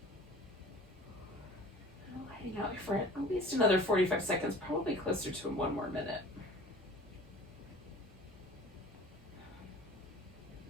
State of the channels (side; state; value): both; normal; correlation 0.44